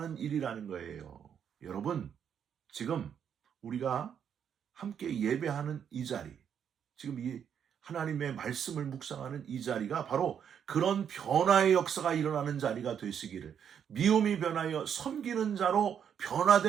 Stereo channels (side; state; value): left; quieter; 8.2 dB